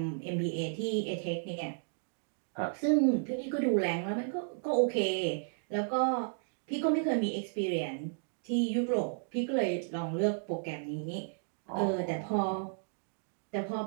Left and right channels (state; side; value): silent; left; digital silence